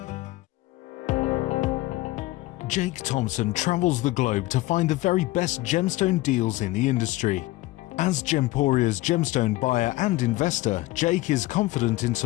Jake Thompson travels the globe to find the very best gemstone deals in the industry. As Gemporia's gemstone buyer and investor, Jake is confident in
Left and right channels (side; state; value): right; quieter; 18.6 dB